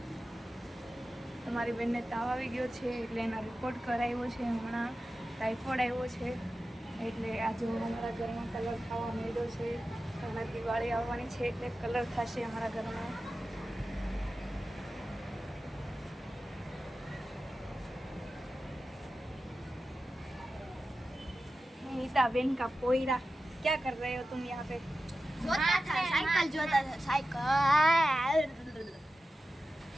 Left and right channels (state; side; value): normal; both; correlation 0.93